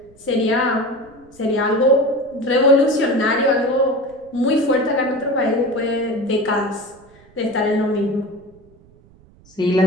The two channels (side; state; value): right; noise; rumble, 28 dB below the sound